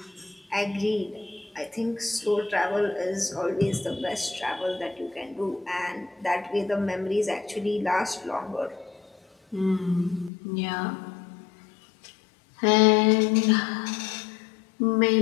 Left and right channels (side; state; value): right; drops out; at 10.3 s